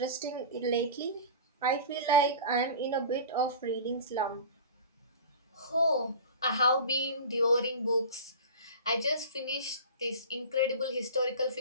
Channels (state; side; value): inverted; both; correlation -0.35